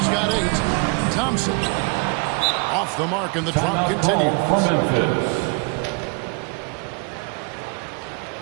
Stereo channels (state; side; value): quieter; left; 32.5 dB